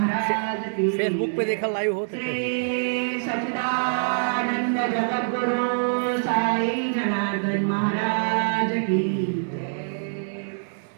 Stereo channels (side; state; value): left; silent; 62 dB below the other